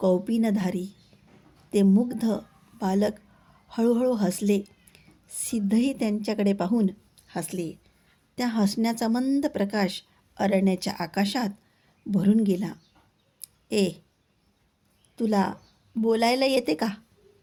ते मुग्ध बालक हळूहळू हसले. सिद्धही त्यांच्याकडे पाहून हसले. त्या हसण्याचा मंद प्रकाश अरण्याच्या आकाशात भरून गेला. ए, तुला बोलायला येते का,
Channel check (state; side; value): identical; both; correlation 1.00